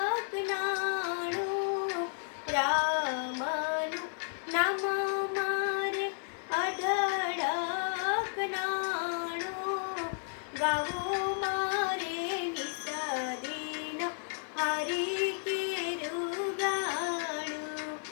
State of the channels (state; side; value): silent; right; 56 dB below the other